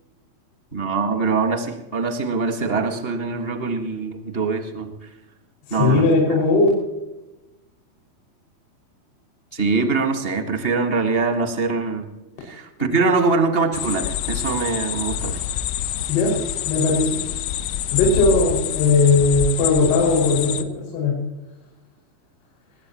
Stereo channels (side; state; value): right; late; 2.8 ms